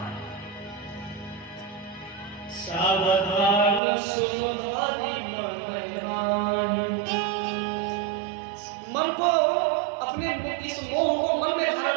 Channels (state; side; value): drops out; left; at 3.8 s